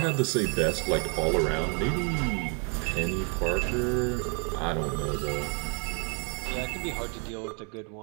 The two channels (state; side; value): quieter; left; 37.3 dB